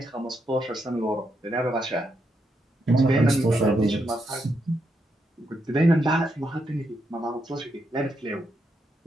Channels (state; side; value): normal; both; correlation 0.81